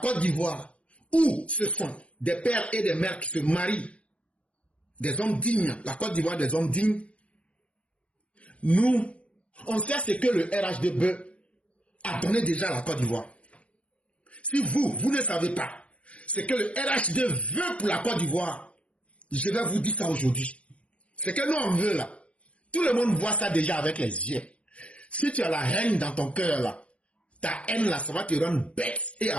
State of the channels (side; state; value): right; late; 0.062 ms